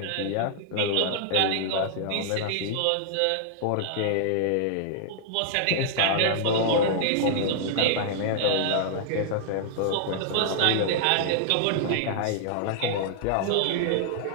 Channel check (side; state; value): both; different; correlation -0.01